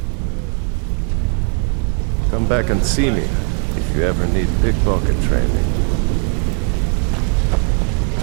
Come back and see me if you ever need pickpocket training.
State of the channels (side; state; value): left; quieter; 39.2 dB